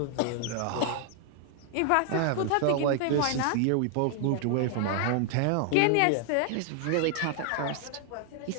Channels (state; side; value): different; both; correlation 0.00